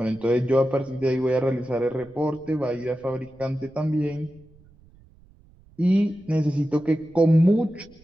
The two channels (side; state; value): right; noise; rumble, 27 dB below the sound